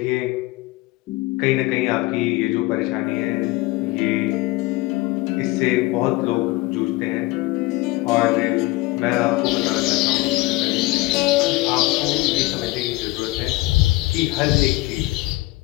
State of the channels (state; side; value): quieter; right; 20.0 dB